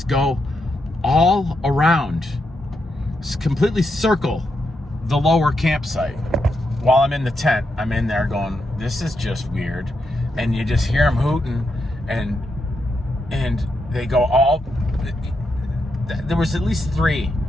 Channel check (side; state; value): both; normal; correlation 0.83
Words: go all around, completely circle the lower campsite. While I'm in the tent, I'm in there going, this is just weird. And you just hear them hooting, and they go all, there was at least 3,